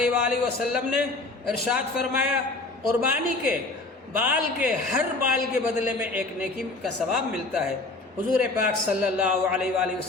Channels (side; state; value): right; quieter; 3.2 dB